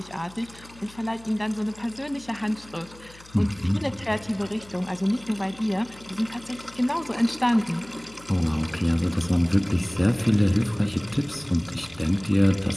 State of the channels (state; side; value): noise; left; hum, 22 dB below the sound